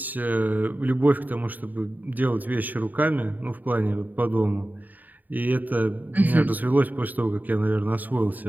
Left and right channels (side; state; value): left; late; 0.085 ms